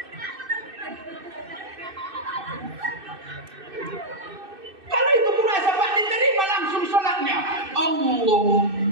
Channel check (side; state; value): left; late; 2.6 ms